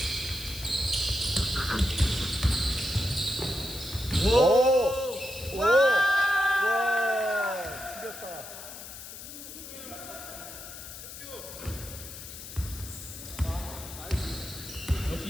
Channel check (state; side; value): noise; left; hiss, 12 dB below the sound